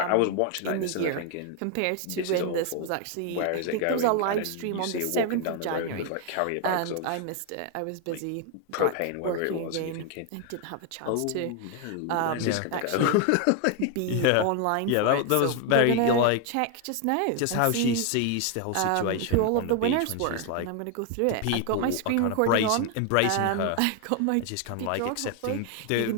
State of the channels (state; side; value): different; both; correlation 0.01